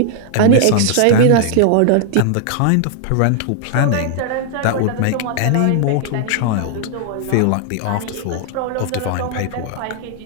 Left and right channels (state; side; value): different; both; correlation 0.00